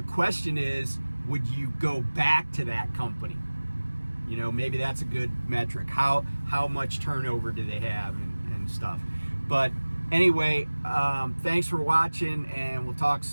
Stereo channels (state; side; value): inverted; both; correlation -1.00